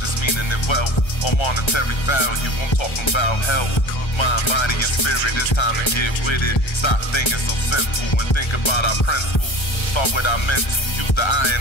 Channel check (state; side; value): late; right; 1.3 ms